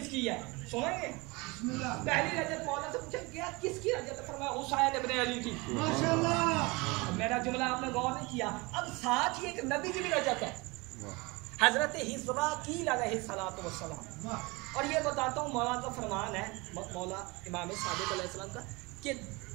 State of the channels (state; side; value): quieter; left; 25.2 dB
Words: है सुनेंगे? पहली रजत मौला से पूछा गया किसकी रजत? फरमाया हुसैन इब्न अली की। माशाअल्लाह। मेरा जुमला आपने गौर नहीं किया। अब साथ ही एक नबी की भी रजत है, हजरत हिज़्राकील अलैहिस्सलातु वस्सलाम। और ये बताता हूँ मौला का फरमान है, मौला इमाम सादिक अलैहिस्सलाम का, कि